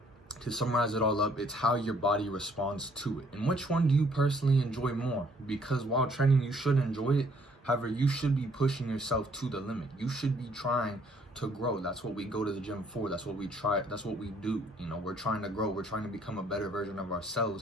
to summarize it all up, it's how your body responds to it. And which one do you personally enjoy more? Because while training, you should enjoy it. However, you should be pushing yourself to the limit. You should be trying to grow. That's what we go to the gym for. That's what we try. That's what we do. You know, we're trying to grow. We're trying to become a better version of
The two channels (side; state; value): both; normal; correlation 0.63